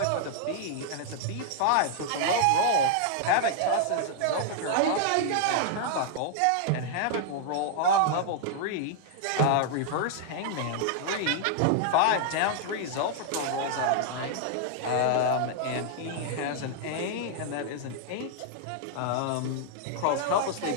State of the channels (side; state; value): both; different; correlation -0.01